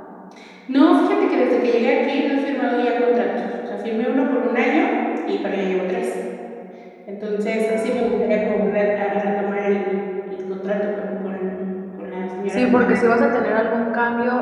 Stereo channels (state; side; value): identical; both; correlation 1.00